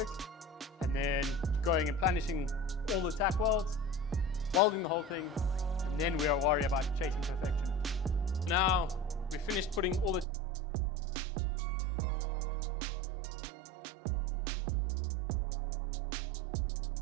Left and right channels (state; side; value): drops out; left; at 10.2 s